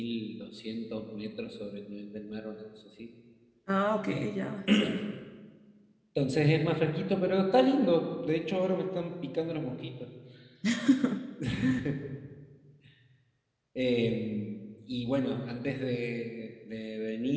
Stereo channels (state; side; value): identical; both; correlation 1.00